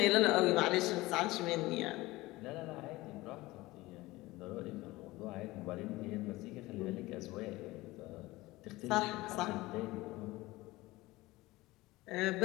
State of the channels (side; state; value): right; quieter; 19.6 dB